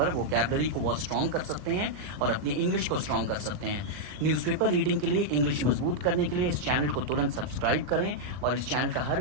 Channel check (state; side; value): late; left; 39 ms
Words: वोकैबुलरी को बहुत स्ट्रॉन्ग कर सकते हैं और अपनी इंग्लिश को स्ट्रॉन्ग कर सकते हैं। न्यूज़पेपर रीडिंग के लिए, इंग्लिश मजबूत करने के लिए इस चैनल को तुरंत सब्सक्राइब करें और इस चैनल का हर